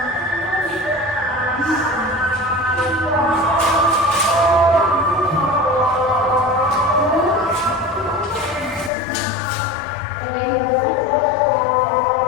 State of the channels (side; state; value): right; drops out; at 8.9 s